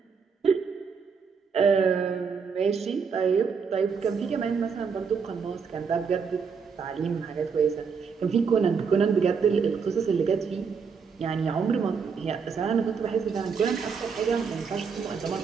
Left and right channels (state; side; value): quieter; left; 5.9 dB